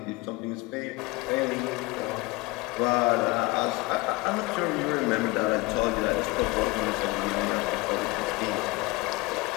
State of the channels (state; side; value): quieter; right; 22.6 dB